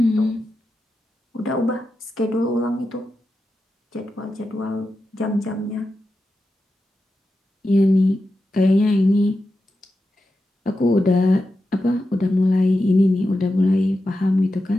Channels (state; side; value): normal; both; correlation 0.90